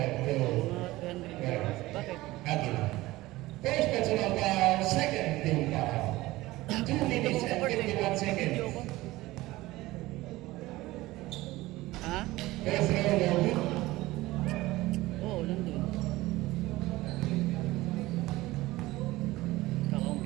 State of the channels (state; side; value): quieter; left; 18.5 dB